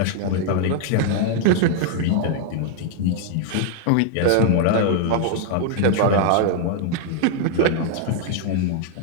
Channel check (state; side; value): different; both; correlation 0.00